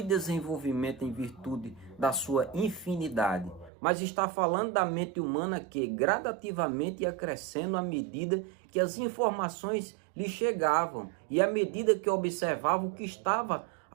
desenvolvimento em virtude da sua infinidade, mas está falando da mente humana que gradativamente ia crescendo à medida que as informações lhe chegavam e à medida que observava o que estava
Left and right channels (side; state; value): left; drops out; at 3.7 s